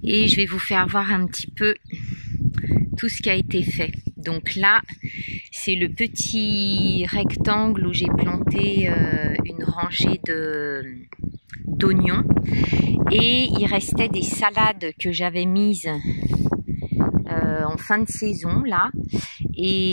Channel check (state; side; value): inverted; both; correlation -1.00